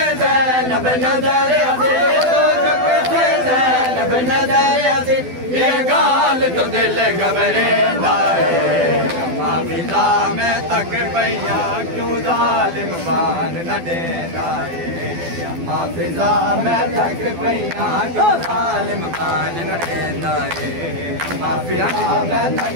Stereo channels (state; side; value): late; left; 12 ms